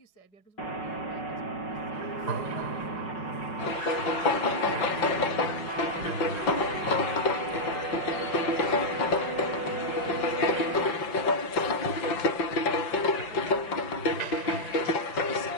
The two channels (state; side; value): late; right; 5.4 ms